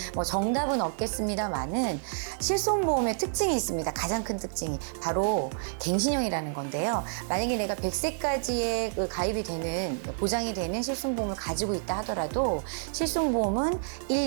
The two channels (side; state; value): left; silent; 59 dB below the other